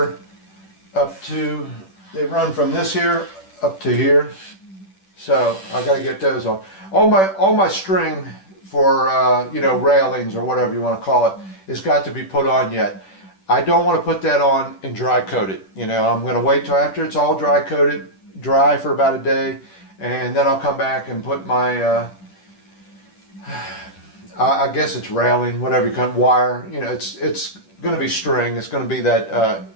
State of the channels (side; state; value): right; late; 10 ms